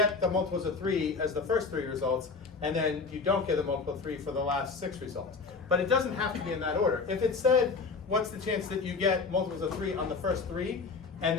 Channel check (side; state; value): right; quieter; 4.6 dB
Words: the multiples of 3 as the first 3 results, and then you don't get a multiple of 3 for the last 6 results. But it doesn't have to be in that order. If it said, what's the chance that you get multiples of 3 on the first 3, and